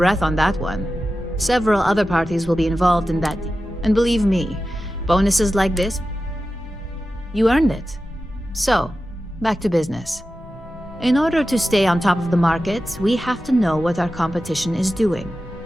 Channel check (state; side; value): normal; both; correlation 0.93